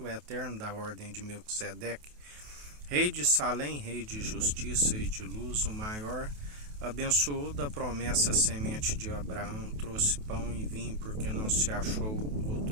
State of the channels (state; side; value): late; left; 28 ms